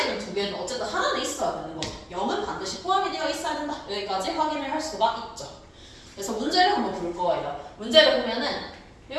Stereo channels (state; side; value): identical; both; correlation 1.00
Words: 두 개든 어쨌든 하나는 있어야 되는 거죠. 0은 반드시 포함이 되어 있어야 된다. 여기까지 확인을 할 수가 있죠. 그래서 문제를 한번 볼 거예요. 문제를 보면은